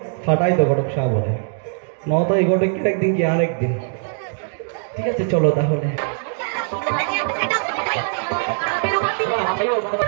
ফাটাই তো ঘটক সাহ বলে, নয়তো এই ঘটক কি একদিন কি আর একদিন। ঠিক আছে, চলো তাহলে।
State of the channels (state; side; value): silent; left; digital silence